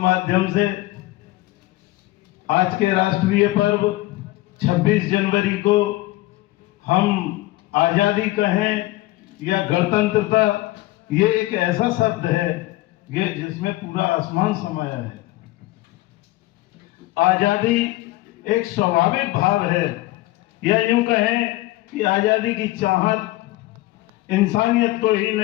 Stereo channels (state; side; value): quieter; right; 18.5 dB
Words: से आज के राष्ट्रीय पर्व 26 जनवरी को हम आज़ादी कहें या गणतंत्रता, ये एक ऐसा शब्द है ये जिसमें पूरा आसमान समाया है। आज़ादी एक स्वाभाविक भाव है, या यूं कहें कि आज़ादी की चाहत इंसानियत को ही